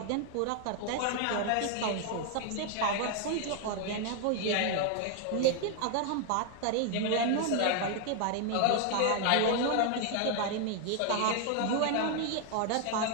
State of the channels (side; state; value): both; different; correlation 0.00